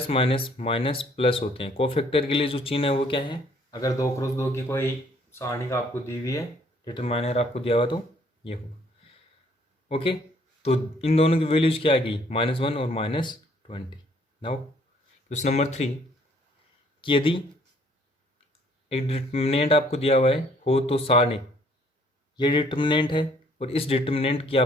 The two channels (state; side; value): normal; both; correlation 0.62